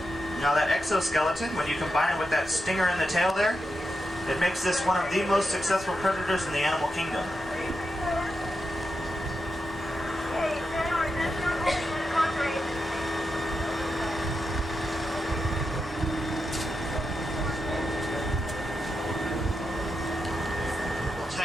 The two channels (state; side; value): normal; both; correlation 0.87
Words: Now that exoskeleton, when you combine it with that stinger in the tail there, it makes this one of the most successful predators in the animal kingdom.